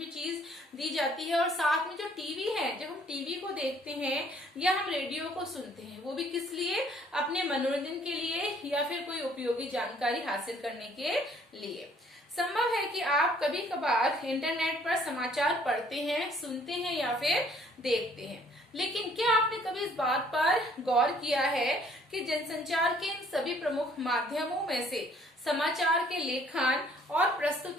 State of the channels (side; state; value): both; normal; correlation 0.60